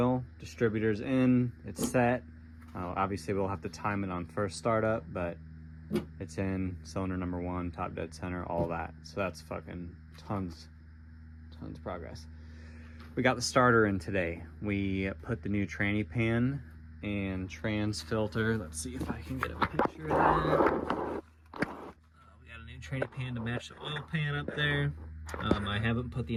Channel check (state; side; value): identical; both; correlation 1.00